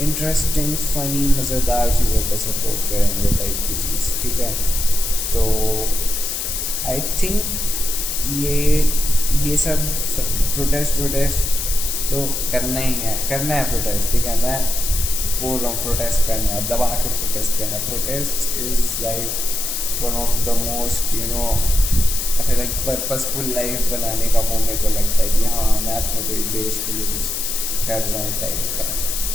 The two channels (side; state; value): left; noise; hiss, 2 dB below the sound